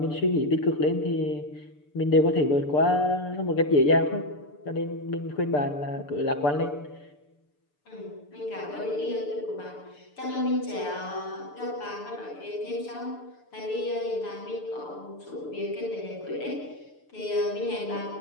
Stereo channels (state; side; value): late; right; 6.8 ms